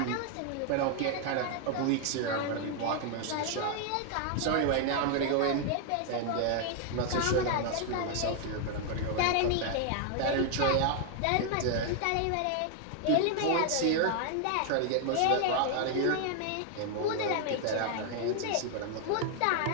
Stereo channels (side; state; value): both; different; correlation 0.00